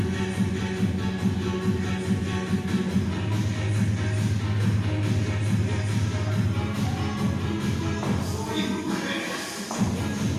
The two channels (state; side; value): identical; both; correlation 1.00